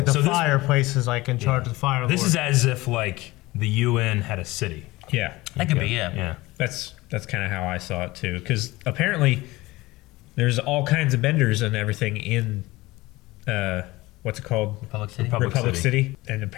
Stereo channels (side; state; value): right; quieter; 20.0 dB